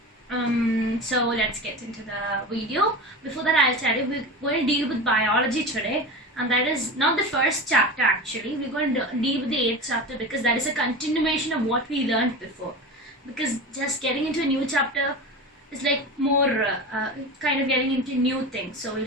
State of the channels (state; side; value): normal; both; correlation 0.28